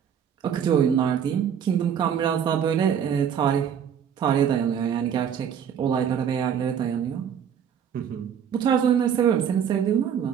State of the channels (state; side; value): quieter; left; 8.3 dB